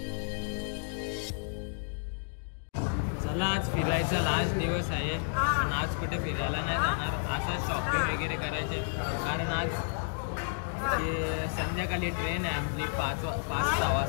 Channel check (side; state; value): right; silent; digital silence